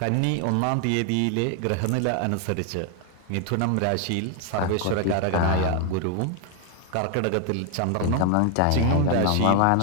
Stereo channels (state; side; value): different; both; correlation 0.00